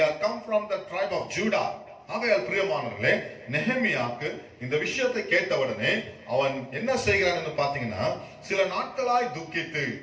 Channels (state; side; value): identical; both; correlation 1.00